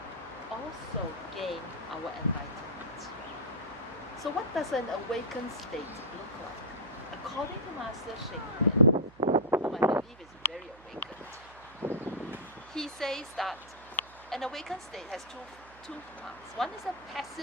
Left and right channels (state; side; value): noise; right; hum, 22 dB below the sound